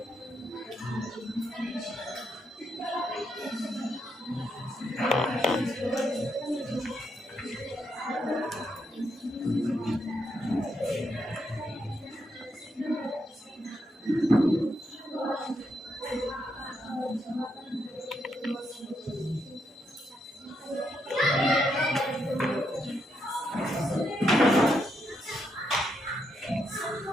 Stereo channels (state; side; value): normal; both; correlation 0.80